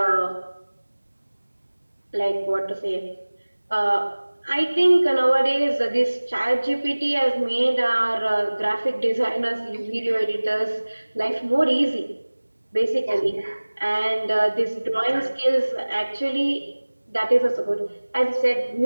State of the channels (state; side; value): inverted; both; correlation -1.00